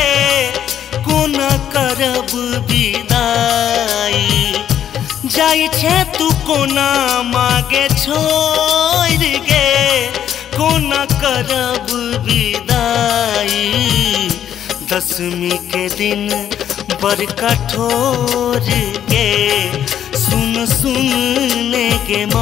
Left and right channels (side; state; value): right; quieter; 10.0 dB